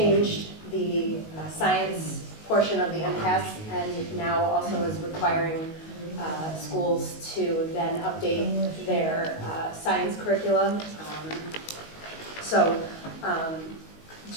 the science portion of the MCAS, and now also is requiring schools to then update their science curricula.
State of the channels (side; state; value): right; late; 19 ms